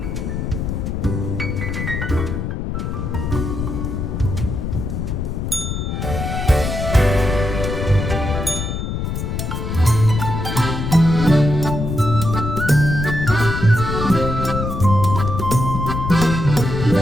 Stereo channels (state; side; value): noise; left; rumble, 3 dB below the sound